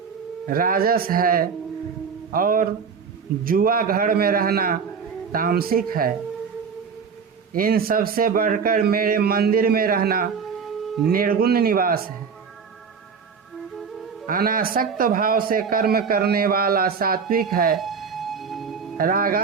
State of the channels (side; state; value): left; quieter; 6.1 dB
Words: राजस है, और जुआ घर में रहना तामसिक है। इन सब से बढ़कर मेरे मंदिर में रहना निर्गुण निवास है। अनासक्त भाव से कर्म करने वाला सात्विक है,